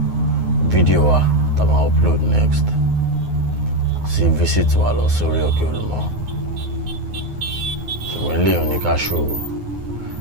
fídíò wa tá a máa upload next sí visit wa lọ sórí òkè Olumo ṣùgbọ́n eléyìí ní ká ṣòro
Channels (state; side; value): late; left; 9.5 ms